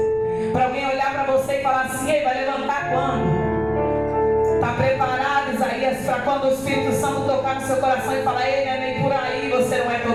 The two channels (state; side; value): noise; left; rumble, 22 dB below the sound